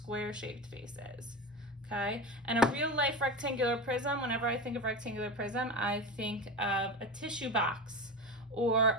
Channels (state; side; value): normal; both; correlation 0.25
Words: shaped faces. Okay, and a real life rectangular prism, whenever I think of rectangular prism, I think of a tissue box